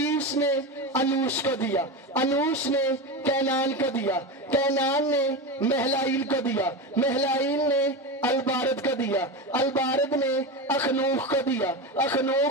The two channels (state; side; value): normal; both; correlation 0.20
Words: نے انوش کو دیا، انوش نے کینان کو دیا، کینان نے مہلائیل کو دیا، مہلائیل نے البارد کو دیا، البارد نے اخنوخ کو دیا،